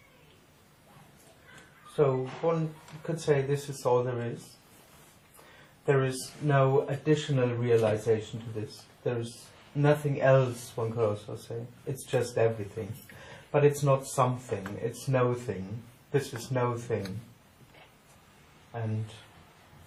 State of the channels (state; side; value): identical; both; correlation 1.00